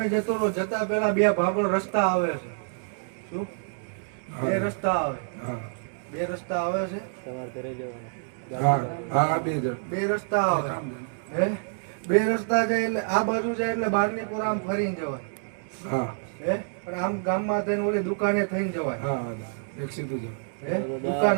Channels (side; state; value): left; silent; 58 dB below the other